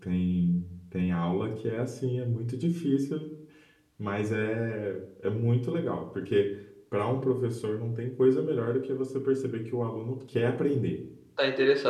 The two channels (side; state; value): both; identical; correlation 1.00